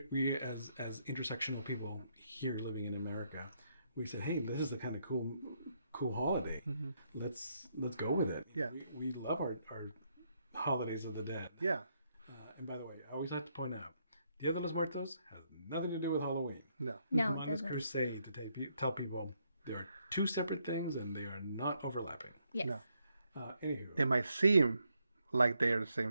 as intersectional people here living in America, we said, hey, this is the kind of cool holiday. Let's go with it. Yeah. We love our holidays of the dead. Yeah. And by the way, I always have to point out, Dia de los Muertos has nothing to do with Halloween. No. No, I'm it on this doesn't. crusade to tell people there are two separate things and they are not overlapping. Yes. No. Anywho. They might seem like they are the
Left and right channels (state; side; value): inverted; both; correlation -0.76